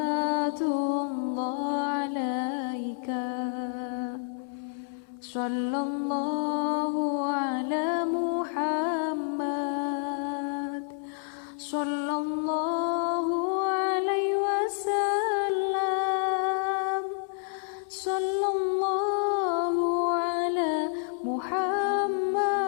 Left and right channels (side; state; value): right; silent; 59 dB below the other